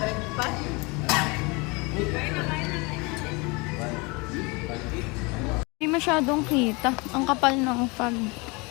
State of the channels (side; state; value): right; quieter; 27.5 dB